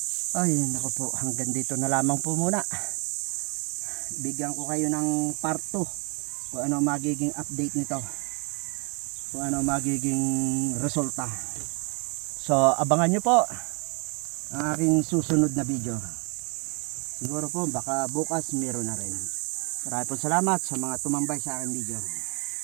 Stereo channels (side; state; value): left; quieter; 33.2 dB